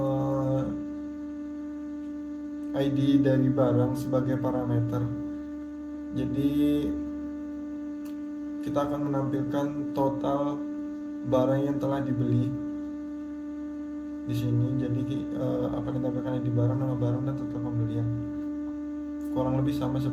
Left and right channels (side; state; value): both; identical; correlation 1.00